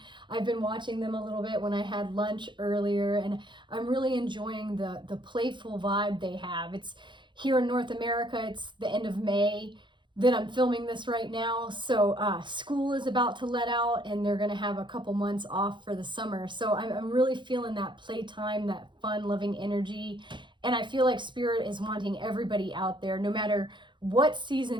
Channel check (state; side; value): late; left; 0.23 ms